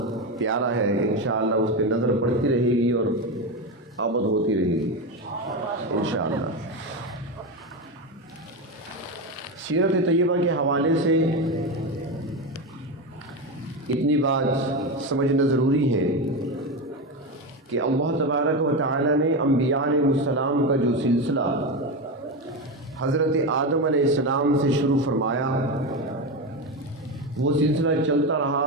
پیارا ہے، انشاءاللہ اس پہ نظر پڑتی رہے گی اور آمد ہوتی رہے گی انشاءاللہ۔ سیرت طیبہ کے حوالے سے اتنی بات سمجھنا ضروری ہے کہ اللہ تبارک و تعالی نے انبیاء علیہ السلام کا جو سلسلہ حضرت آدم علیہ السلام سے شروع فرمایا، وہ سلسلہ چلتا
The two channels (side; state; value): both; normal; correlation 0.16